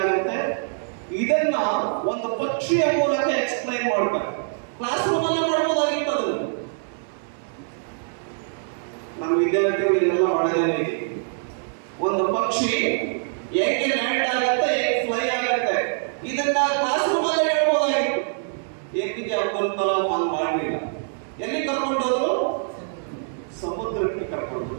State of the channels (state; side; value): silent; left; 62 dB below the other